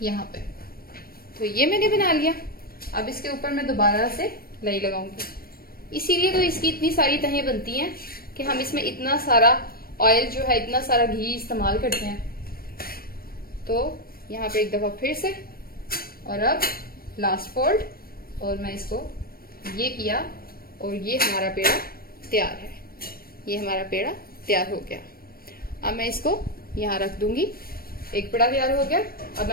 यहाँ पे। तो ये मैंने बना लिया। अब इसके ऊपर मैं दोबारा से लई लगाऊंगी। इसीलिए तो इसकी इतनी सारी तहें बनती हैं कि हम इसमें इतना सारा ऑयल जो है, इतना सारा घी इस्तेमाल करते हैं। तो यहाँ पे एक दफा फिर से, और अब लास्ट फोल्ड, और मैं इसको ये किया और ये हमारा पेड़ा तैयार है। ये हमारा पेड़ा तैयार हो गया। अब मैं इसको यहाँ रख दूंगी। एक पेड़ा तैयार हो गया। अब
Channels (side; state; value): right; late; 0.43 ms